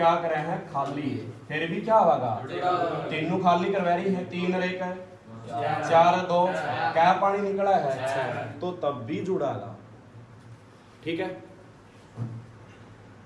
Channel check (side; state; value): both; identical; correlation 1.00